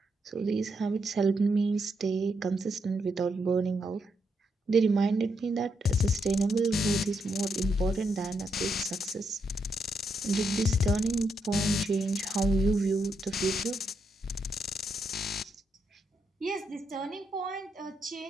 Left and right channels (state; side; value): normal; both; correlation 0.80